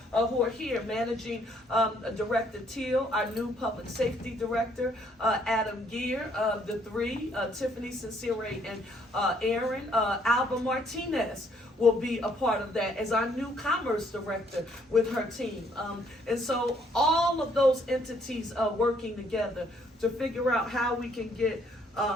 who are here, managing Director Teal, our new public safety director, Adam Gear, the three, Tiffany Sincere and Aaron, Alba Martinez will be a part of that as our new commerce director with her team. And so all of those entities are working together to figure out how we can get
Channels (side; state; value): both; normal; correlation 0.67